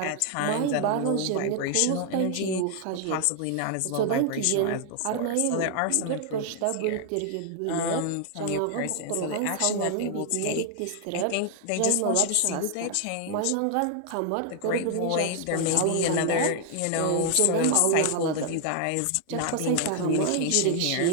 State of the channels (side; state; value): both; different; correlation 0.00